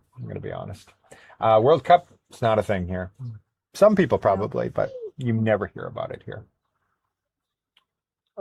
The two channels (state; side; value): identical; both; correlation 1.00